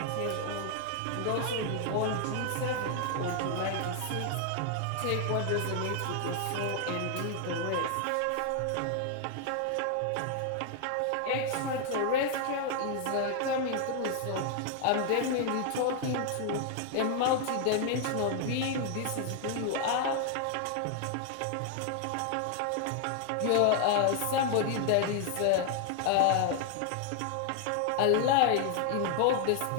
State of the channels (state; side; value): different; both; correlation 0.00